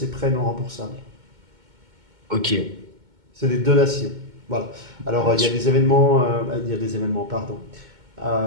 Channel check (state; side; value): late; left; 2.2 ms